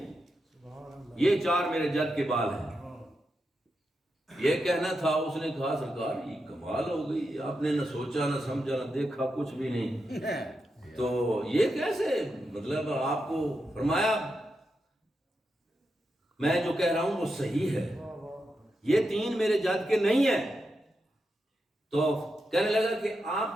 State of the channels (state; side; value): normal; both; correlation 0.87